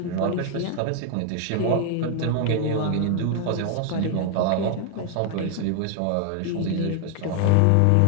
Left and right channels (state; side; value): different; both; correlation 0.00